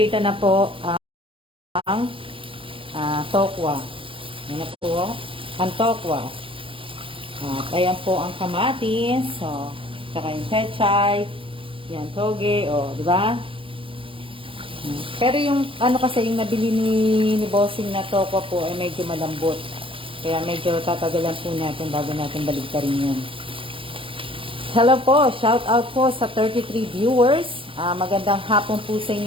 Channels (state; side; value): late; left; 0.25 ms